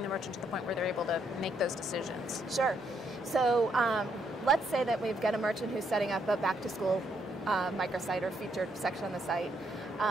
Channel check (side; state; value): both; normal; correlation 0.74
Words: the merchant to the point where they're able to make those decisions? Sure. So let's say that we've got a merchant who's setting up a back-to-school microsite or featured section on the site.